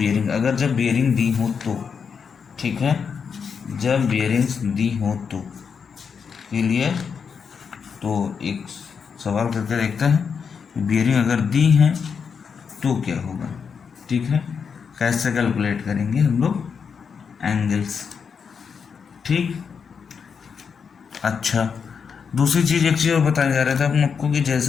अगर जब बियरिंग दी हो तो, ठीक है, जब बियरिंग्स दी हो तो, क्लियर, तो एक सवाल करके देखते हैं, बियरिंग अगर दी है तो क्या होगा। ठीक है, कैसे कैलकुलेट करेंगे हम लोग एंगल्स। ठीक, अच्छा, दूसरी चीज़, एक चीज़ और बताया जा रहा था हम आपको, कि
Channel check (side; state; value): right; quieter; 6.3 dB